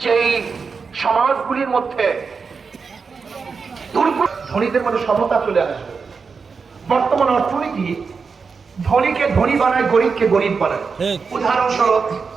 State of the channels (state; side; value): quieter; left; 5.2 dB